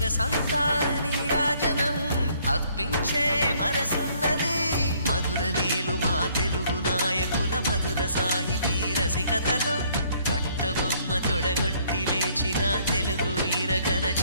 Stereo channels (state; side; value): inverted; both; correlation -0.64